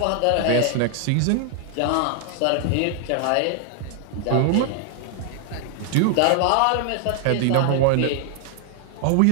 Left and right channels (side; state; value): both; different; correlation 0.00